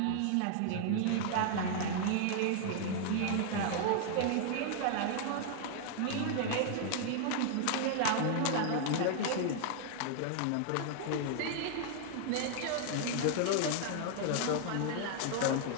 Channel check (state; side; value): different; both; correlation 0.00